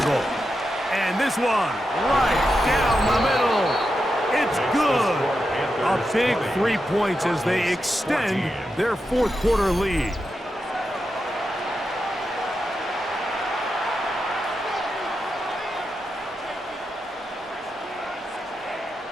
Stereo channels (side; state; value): both; normal; correlation 0.88